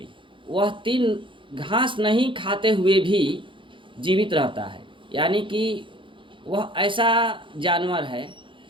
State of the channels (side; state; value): left; late; 0.24 ms